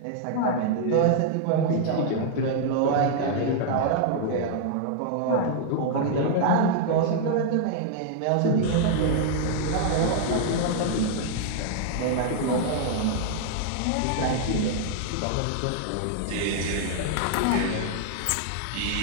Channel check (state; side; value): different; both; correlation -0.01